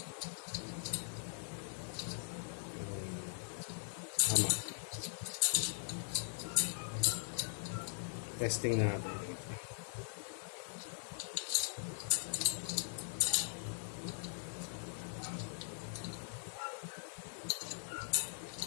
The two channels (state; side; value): silent; right; 50 dB below the other